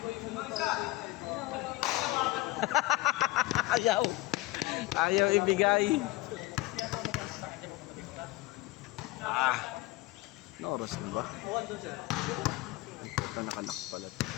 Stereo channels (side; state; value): right; quieter; 19.4 dB